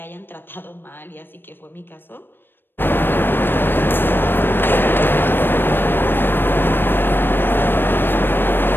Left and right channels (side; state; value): right; late; 0.097 ms